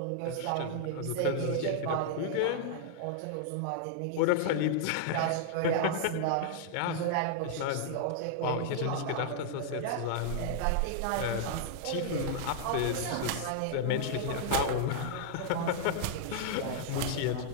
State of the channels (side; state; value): both; different; correlation -0.01